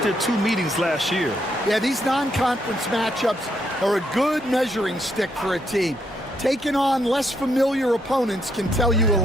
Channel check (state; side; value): normal; both; correlation 0.76